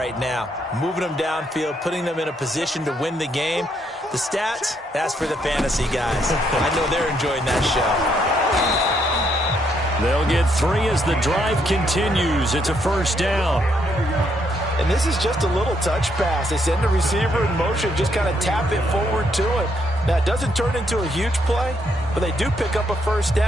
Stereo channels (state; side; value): normal; both; correlation 0.74